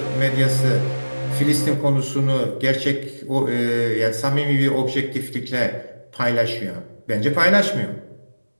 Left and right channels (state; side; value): inverted; both; correlation -1.00